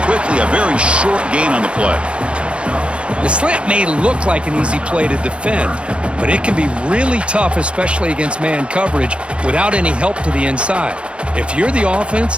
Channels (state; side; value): late; left; 0.058 ms